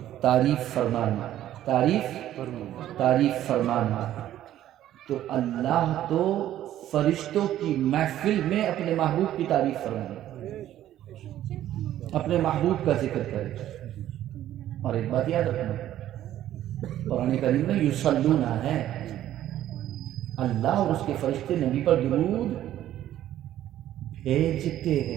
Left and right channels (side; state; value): left; quieter; 12.5 dB